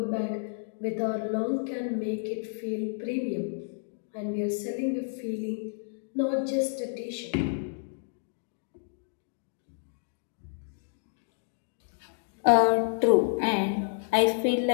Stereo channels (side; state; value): right; silent; digital silence